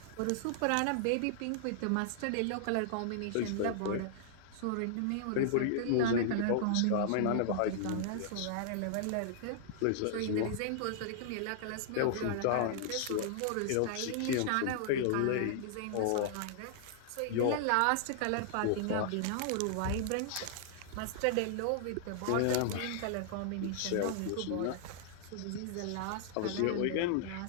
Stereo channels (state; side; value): different; both; correlation -0.01